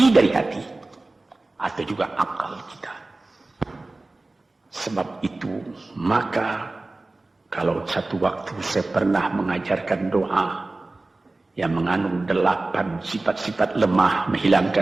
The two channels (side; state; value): left; quieter; 3.0 dB